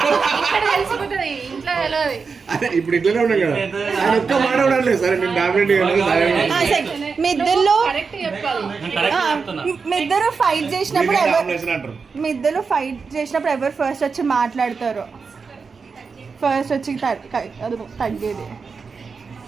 తెలిసిపోతుంది, ఇంట్లో తెలియదు. అదే ఇప్పుడు ఇట్లనే ఉన్నాం కదా, ఆయన ఒక్క మాట ఉండలేదు. సరే నేను డామినేటింగ్ మీ ఇద్దరు కరెక్ట్ చెప్పాలి. మీ ఇద్దరు ఫైట్ చేసినప్పుడు అంటారు. మీ ఇద్దరు ఫైట్ చేసినప్పుడు ఎవరు ఫస్ట్ వచ్చి మాట్లాడతారు? ఫస్ట్ వచ్చి అది తగ్గేది.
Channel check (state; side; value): quieter; left; 5.1 dB